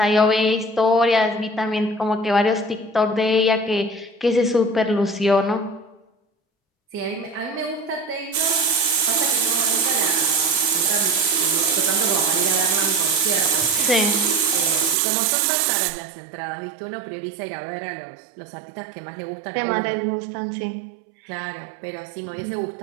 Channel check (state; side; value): drops out; left; at 15.0 s